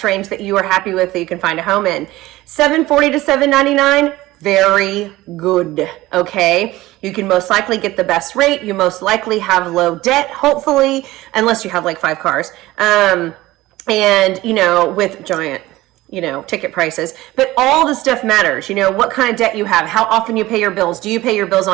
range that you are happy with that you can find a home in. 740 to 799, very good, okay? You can most likely get the best rate. You most likely have low debt, hopefully, unless you have like 5 cars. And, with giant, ticket prices. But all the stuff matters. What kind of debt you have, how often you pay your bills. Do you pay your bills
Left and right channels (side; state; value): left; quieter; 17.7 dB